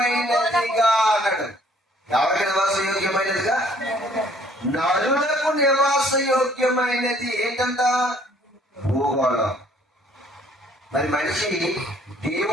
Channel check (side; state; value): both; normal; correlation 0.60